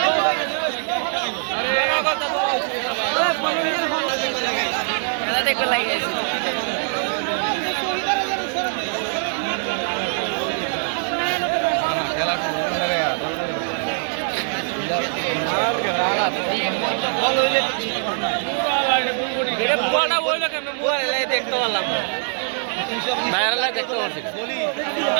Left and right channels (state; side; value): silent; left; 64 dB below the other